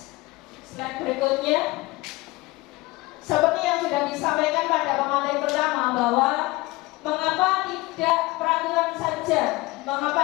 slide berikutnya. Seperti yang sudah disampaikan pada pemateri pertama bahwa mengapa tidak peraturan saja, mengapa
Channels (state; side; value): quieter; right; 21.4 dB